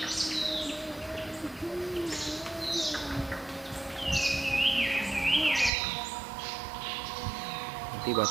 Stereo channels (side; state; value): left; drops out; at 5.7 s